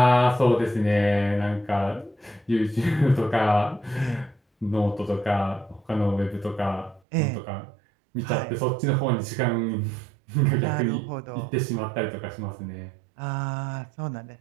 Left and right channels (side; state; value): left; drops out; at 7.0 s